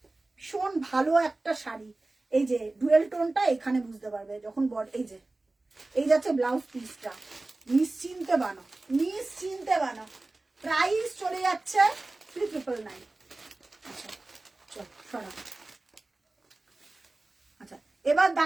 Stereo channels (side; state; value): left; quieter; 3.0 dB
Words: ভীষণ ভালো একটা শাড়ি। এই যে ডুয়েল টোনটা এখানে বুঝতে পারবে যখন এই যে এই যাচ্ছে ব্লাউজ পিসটা, নিশ্চিন্তে বানাও, নিশ্চিন্তে বানাও। প্রাইস চলে যাচ্ছে 3999। আচ্ছা চল সরা। আচ্ছা, এবার